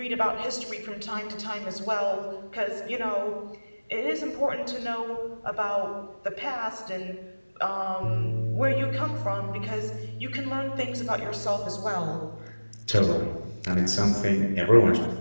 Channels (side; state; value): both; inverted; correlation -1.00